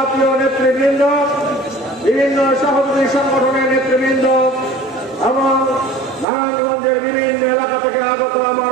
নেতৃবৃন্দ, বিভিন্ন সহযোগী সংগঠনের নেতৃবৃন্দ এবং নারায়ণগঞ্জের বিভিন্ন এলাকা থেকে আগত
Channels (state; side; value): drops out; left; at 6.2 s